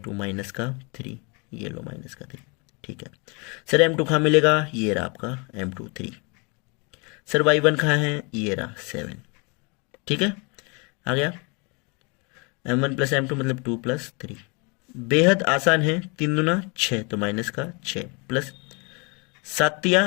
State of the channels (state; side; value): quieter; right; 31.4 dB